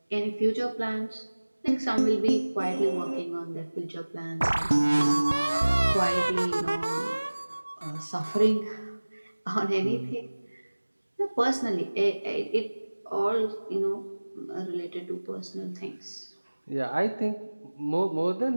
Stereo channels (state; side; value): inverted; both; correlation -1.00